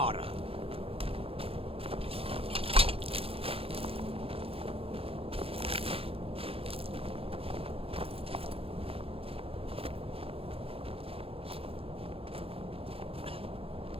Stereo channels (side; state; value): left; late; 0.27 ms